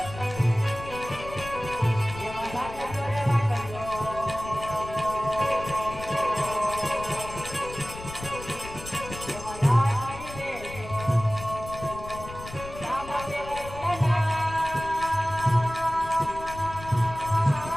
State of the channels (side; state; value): left; noise; rumble, 13 dB below the sound